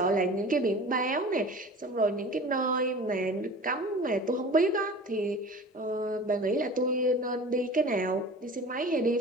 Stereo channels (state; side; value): normal; both; correlation 0.39